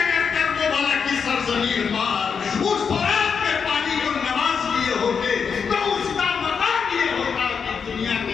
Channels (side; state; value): right; quieter; 6.2 dB